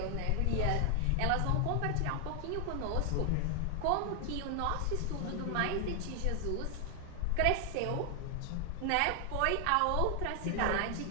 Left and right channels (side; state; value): both; different; correlation 0.00